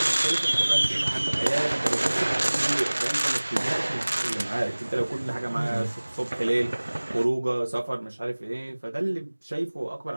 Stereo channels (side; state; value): both; inverted; correlation -1.00